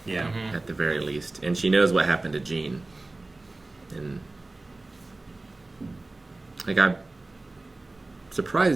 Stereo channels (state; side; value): quieter; left; 3.0 dB